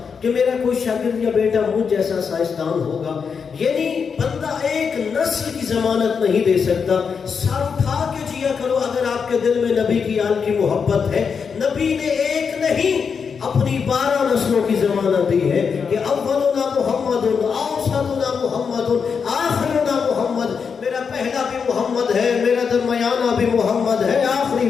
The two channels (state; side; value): quieter; right; 6.1 dB